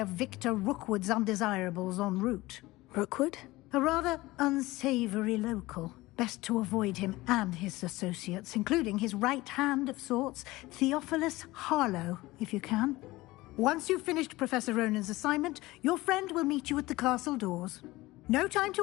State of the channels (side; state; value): right; quieter; 19.5 dB